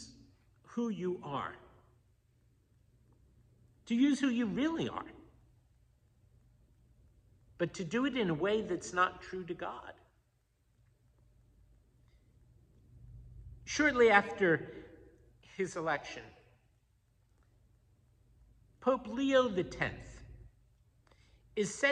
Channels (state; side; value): identical; both; correlation 1.00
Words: who you are. To use who you really are. But to do it in a way that's not true to God. Shortly after his election, Pope Leo X is